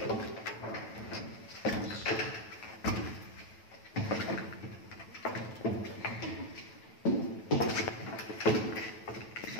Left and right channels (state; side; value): late; right; 9.1 ms